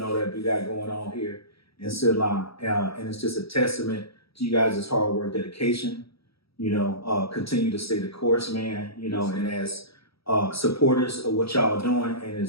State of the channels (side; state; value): right; late; 0.76 ms